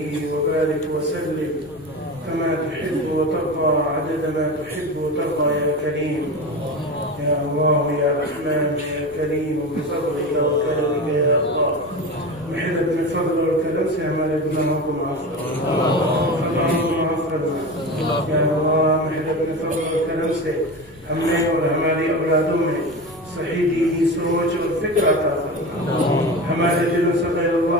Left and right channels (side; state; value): left; noise; rumble, 25 dB below the sound